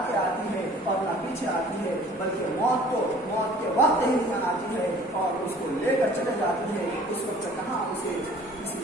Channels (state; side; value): normal; both; correlation 0.51